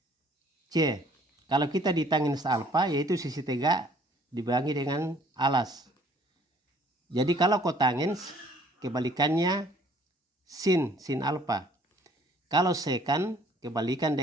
C. Kalau kita di tangens alfa yaitu sisi tegak dibagi dengan alas. Jadi kalau kotangens kebalikannya sin alfa. Kalau sekan kebalikan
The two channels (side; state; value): both; normal; correlation 0.59